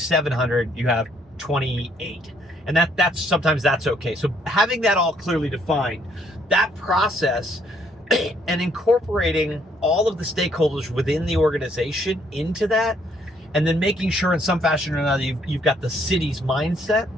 you have 28. And that's sometimes that's okay. So having that all clearly defined, that process and incorporating all of the stakeholders within the organization into that, and then making sure in some fashion or another you've got the city's mindset,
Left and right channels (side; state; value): both; normal; correlation 0.67